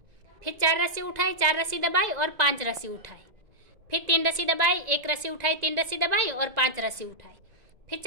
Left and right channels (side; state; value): left; late; 1.9 ms